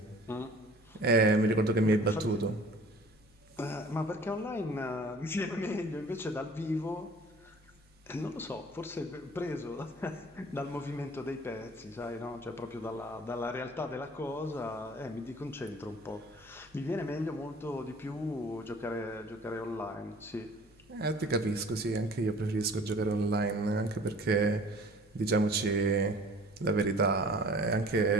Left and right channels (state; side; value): normal; both; correlation 0.48